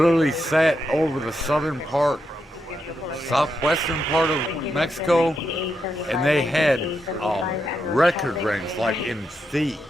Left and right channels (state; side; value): normal; both; correlation 0.83